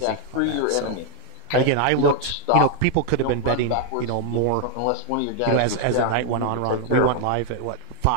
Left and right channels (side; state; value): both; different; correlation 0.00